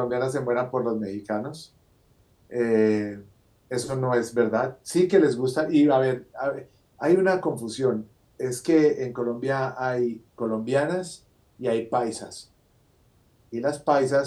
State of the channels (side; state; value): both; identical; correlation 1.00